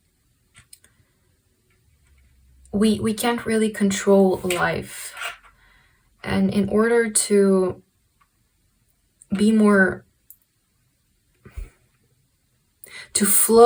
we can't really control life. And in order to be more, to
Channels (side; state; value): both; identical; correlation 1.00